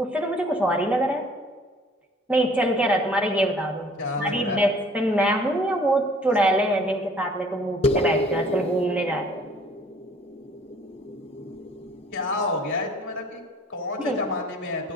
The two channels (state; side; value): normal; both; correlation 0.54